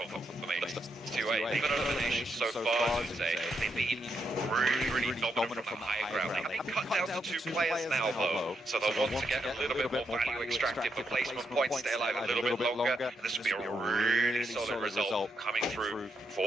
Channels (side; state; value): both; normal; correlation 0.80